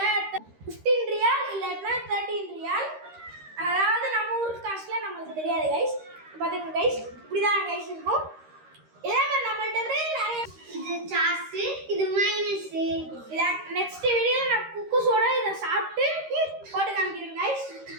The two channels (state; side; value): late; left; 13 ms